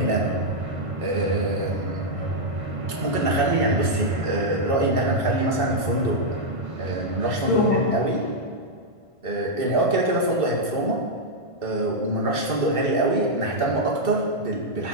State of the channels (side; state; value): left; late; 1.5 ms